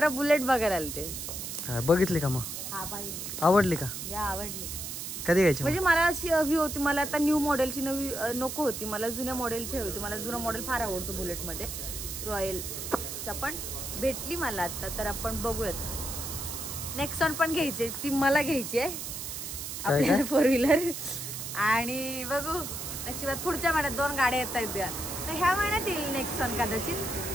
बुलेट बघायला आले ते. बघितली का मग? हा पाहिजे. आवडली का? या आवडली. कधी घ्यायची? म्हणजे मला अशी हवी होती, मला आता न्यू मॉडेलची नवी नको होती, मला जुन्या मॉडेलची हवी होती. मला जुना मॉडेल फार आवडतो बुलेट मध्ये, रॉयलचा. पण भेटली मला आता, तर आपण बघूयात. नेक्सॉन पण घ्यायची, ती मला घ्यायची आहे आपल्याला 4 व्हीलर. आणि बघू नशिबात पुढच्या महिन्यात 2 गाड्या येत आहेत. तर ह्या महिन्यात येईल नेक्सॉन कदाचित,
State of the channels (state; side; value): noise; right; hiss, 6 dB below the sound